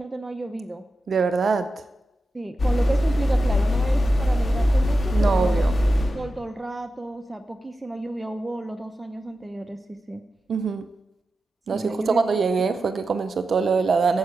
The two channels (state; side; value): normal; both; correlation 0.91